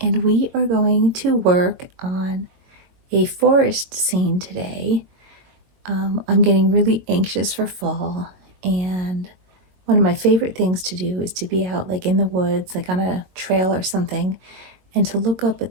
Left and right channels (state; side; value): late; left; 22 ms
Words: we are going to work on a forest scene today. I'm getting really anxious for fall, and one of my favorite things to do is to be out like in the woods, like on a trail or something, and to look up